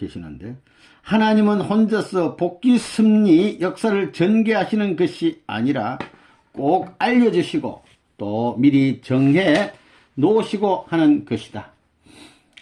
하나님은 혼자서 복귀 승리 역사를 전개하시는 것이 아니라 꼭 알려주시고 또 미리 정해 놓으시고 하는 것이다.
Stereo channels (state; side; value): identical; both; correlation 1.00